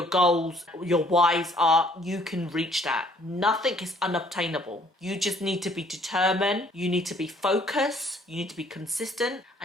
goals, your whys are, you can reach that. Nothing is unobtainable. You just need to be determined, you need to be focused, you need to be consistent,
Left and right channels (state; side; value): normal; both; correlation 0.61